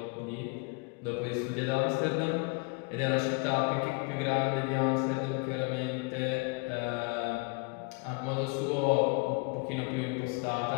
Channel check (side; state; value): right; quieter; 32.9 dB